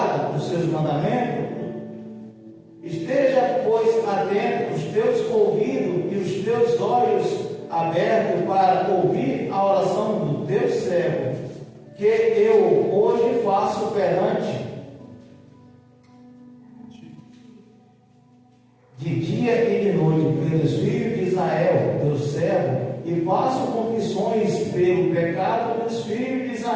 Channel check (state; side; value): identical; both; correlation 1.00